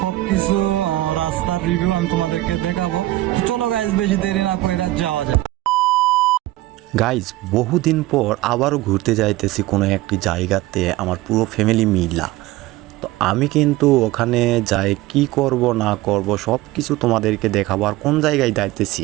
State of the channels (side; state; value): left; quieter; 17.2 dB